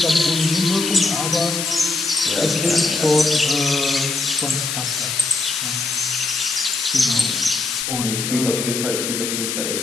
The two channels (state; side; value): noise; left; hiss, 2 dB below the sound